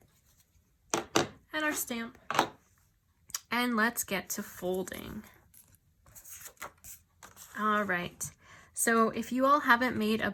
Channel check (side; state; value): both; identical; correlation 1.00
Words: and our stamp. And let's get to folding. All right, so if you all haven't made a